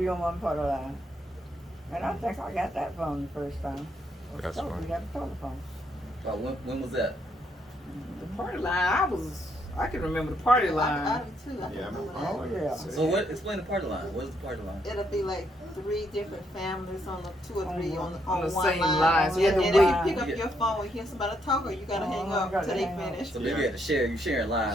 on one part of line. And I think I got that phone the first time. That's So funny. we got a telephone. When was that? The party line, I can remember the party I line. do too. I Yeah, remember Oh, that. yeah. So what? Explain the party line. What is the party line? It'll be like 3 different families on the 2 or 3 on On the one same line. line. So you had And to if wait. you pick up your phone and hear somebody talking, you gotta hang Oh, up gotta till they hang up. finish. So maybe you had to share. You sharing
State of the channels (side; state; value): both; normal; correlation 0.74